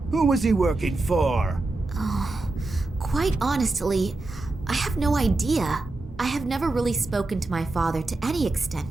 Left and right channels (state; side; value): quieter; left; 3.1 dB